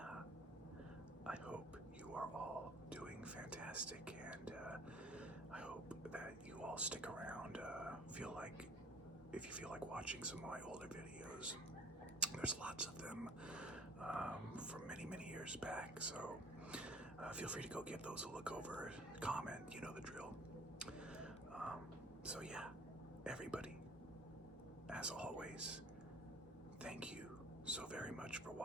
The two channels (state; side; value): normal; both; correlation 0.52